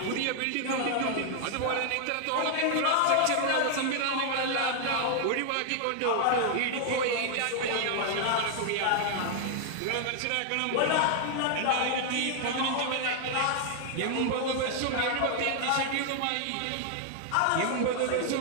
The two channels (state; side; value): different; both; correlation 0.00